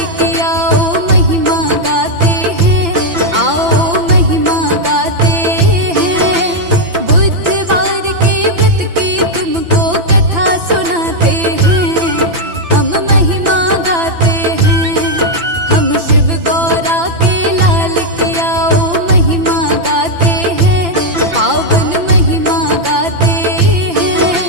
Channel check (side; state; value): left; late; 5.9 ms